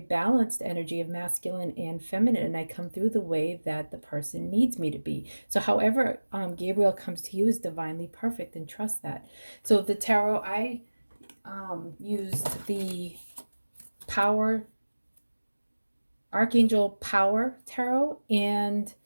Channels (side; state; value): both; inverted; correlation -1.00